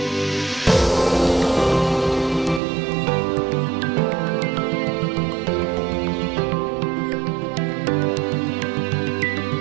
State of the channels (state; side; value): drops out; left; at 2.6 s